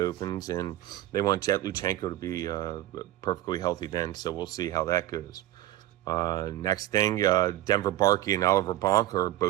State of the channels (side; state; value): left; quieter; 14.7 dB